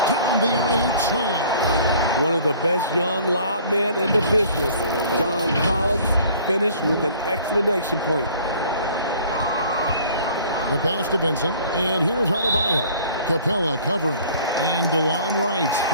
down the alley-oop slam. One of the best young lob men in the business, John Collins, finished with an exclamation point. The pass to Vincent, and here's Adebayo. Capella covering, and DeLon Wright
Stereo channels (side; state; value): both; inverted; correlation -0.52